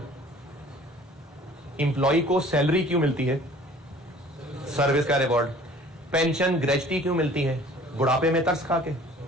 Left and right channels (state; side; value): normal; both; correlation 0.50